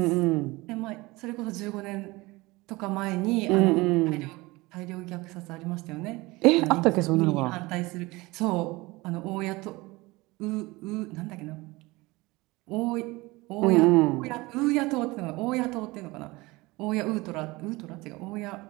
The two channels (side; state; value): left; quieter; 22.1 dB